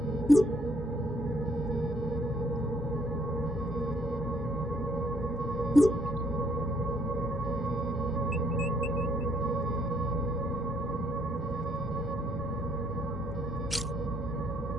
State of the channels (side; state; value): both; normal; correlation 0.68